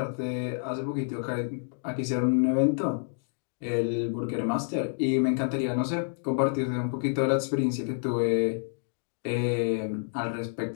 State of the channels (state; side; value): silent; right; digital silence